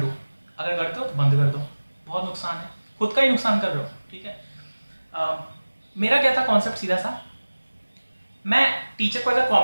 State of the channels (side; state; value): both; inverted; correlation -1.00